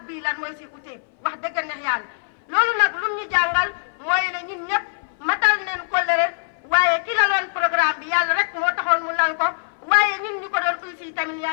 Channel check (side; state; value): right; silent; 59 dB below the other